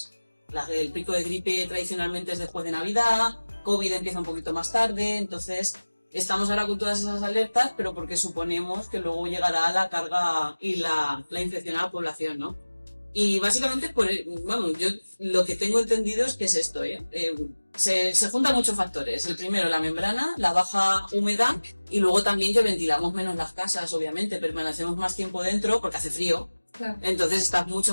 El pico de gripe tradicionalmente es después de Navidad, COVID empieza un poquito más tarde, entonces estamos ahora con todas esas alertas, pero porque suponemos que luego llegará la carga y la infección a la población, ¿no? Y básicamente, pues, vamos, yo lo que tengo entendido es que es esto, se juntan muchos factores. El primero, la membrana, la baja humedad, y luego también que ventilamos menos las casas, obviamente, permanecemos más tiempo dentro porque hace frío. Claro. Entonces estás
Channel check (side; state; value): both; inverted; correlation -1.00